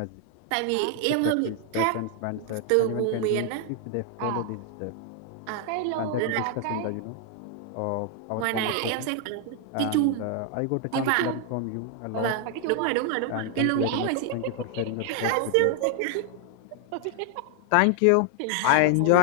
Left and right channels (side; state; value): both; different; correlation 0.00